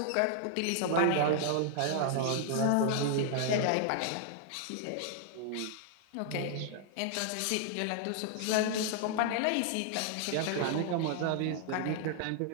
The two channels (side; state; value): both; different; correlation -0.01